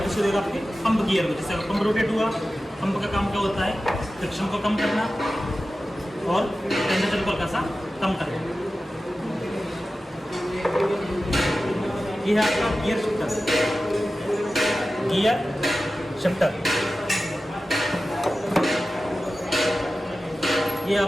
से देगा आपके पंप गियर को। जैसे पंप रोटेट हुआ, पंप का काम क्या होता है? फ्रिक्शन को कम करना और टेम्परेचर को हल्का सा कम करना। ये है आपका गियर शिफ्टर। ये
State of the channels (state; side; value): normal; both; correlation 0.94